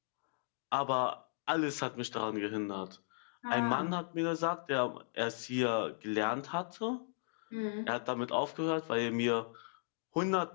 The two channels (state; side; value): silent; right; digital silence